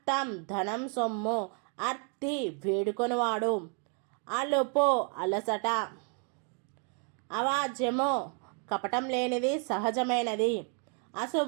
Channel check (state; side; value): quieter; left; 39.5 dB